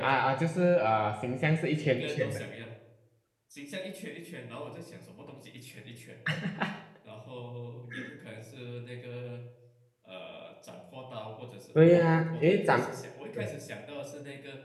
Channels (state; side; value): identical; both; correlation 1.00